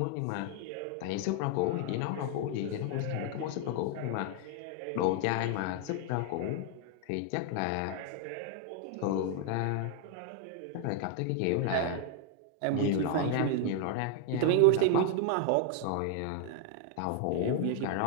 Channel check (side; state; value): both; different; correlation 0.00